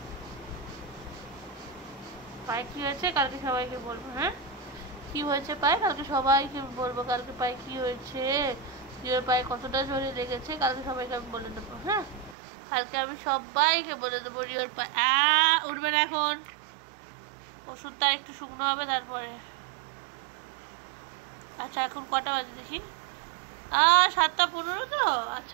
পায়ে কি হয়েছে কালকে সবাইকে বলবো। হ্যাঁ, কি হয়েছে পায়ে কালকে সবাইকে বলবো। কালকে পায়ে কি হয়েছে, রিওর পায়ে কতটা জোরে লেগেছে কালকে সবাইকে আমি বলে দেবো। হ্যাঁ, কালকে আমি সবাইকে বলে দেবো রিওর পায়ে। উঠবে না এখন, ওষুধটা একটু শুকনো হবে তারপরে। আচ্ছা এখন কটা বাজে দেখি? 7:15 তো।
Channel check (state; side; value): drops out; left; at 12.4 s